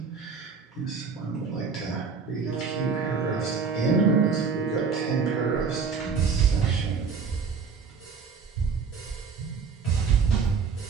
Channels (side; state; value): left; quieter; 5.5 dB